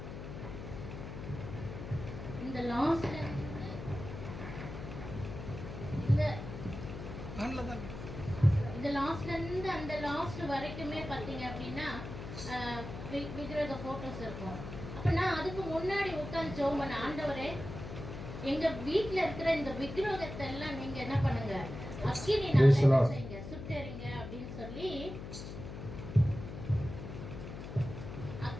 இருந்து அந்த லாஸ்ட் வரைக்குமே பாத்தீங்க அப்படின்னா விக்கிரக போட்டோஸ் இருக்கும். அப்ப நான் அதுக்கு முன்னாடி உட்கார்ந்து ஜெபம் பண்ண, ஆண்டவரே எங்க வீட்டுல இருக்கிற இந்த விக்கிரகத்தை எல்லாம் நீங்க என்ன பண்ணுங்க, அக்கினி செய்யுங்க, சுட்டெறிங்க அப்படின்னு சொல்லி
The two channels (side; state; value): left; noise; hum, 9 dB below the sound